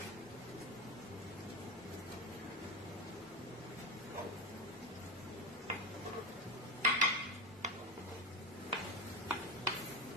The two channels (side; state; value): both; normal; correlation 0.19